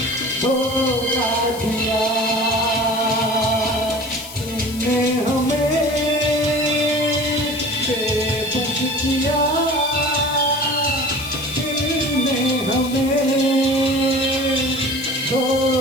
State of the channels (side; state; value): left; noise; hiss, 15 dB below the sound